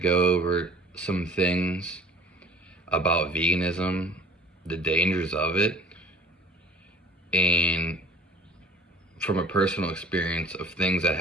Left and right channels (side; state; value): both; normal; correlation 0.49